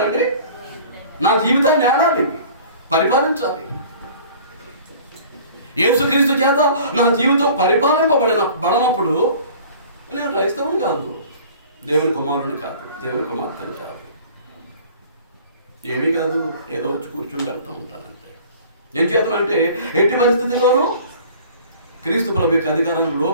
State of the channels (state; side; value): inverted; both; correlation -0.47